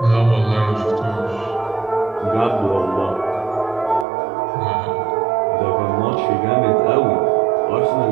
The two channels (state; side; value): drops out; left; at 4.0 s